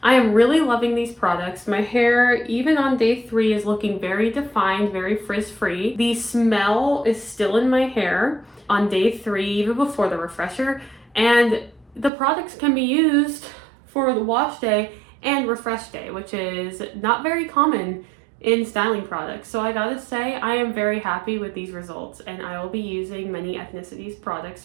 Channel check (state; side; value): drops out; left; at 12.1 s